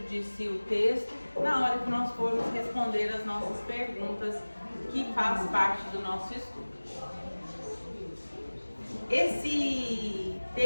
de si o texto na hora que nós formos responder as nossas perguntas, que faz parte do nosso estudo. Esse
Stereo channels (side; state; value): both; inverted; correlation -1.00